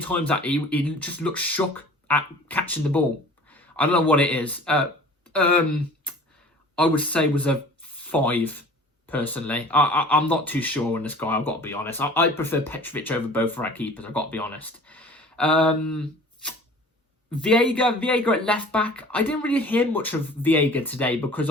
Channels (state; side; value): normal; both; correlation 0.45